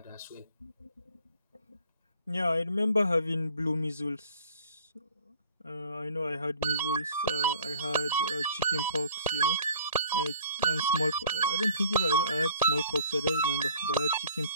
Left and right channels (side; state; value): both; inverted; correlation -0.52